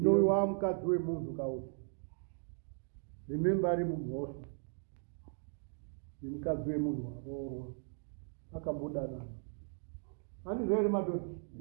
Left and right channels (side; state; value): left; silent; 53 dB below the other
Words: mukadzi wemunhu kauti rimemba ari mumhoso yemukadzi wemunhu waroorwa akambodanana handizvo here madhodha